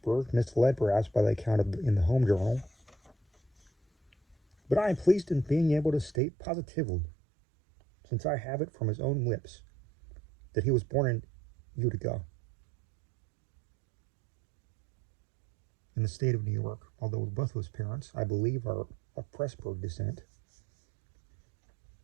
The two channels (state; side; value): drops out; left; at 6.2 s